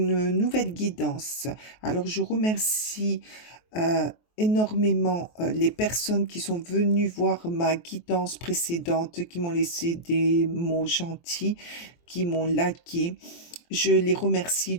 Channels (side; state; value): right; late; 23 ms